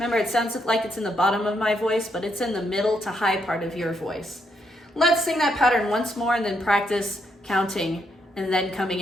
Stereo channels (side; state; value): both; normal; correlation 0.77